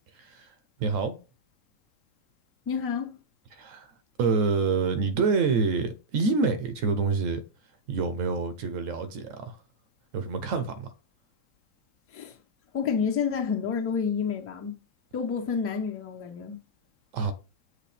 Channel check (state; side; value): late; left; 3.7 ms